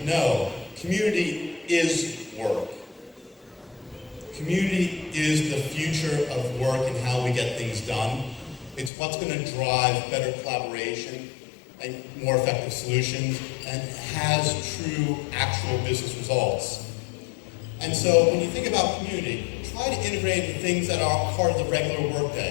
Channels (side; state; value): right; drops out; at 8.9 s